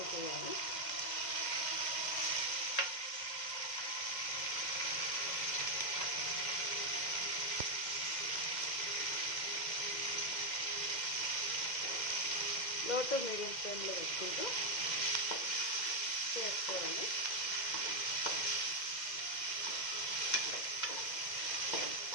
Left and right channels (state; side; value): late; right; 2.0 ms